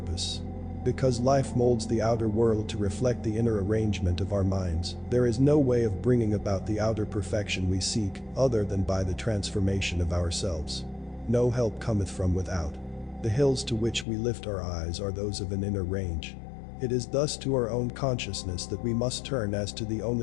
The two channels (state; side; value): drops out; right; at 14.1 s